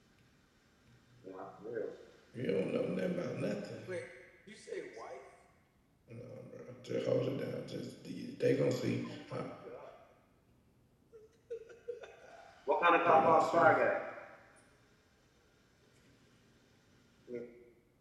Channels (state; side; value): identical; both; correlation 1.00